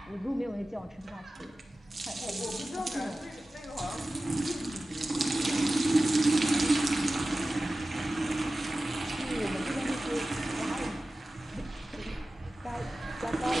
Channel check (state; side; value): normal; both; correlation 0.96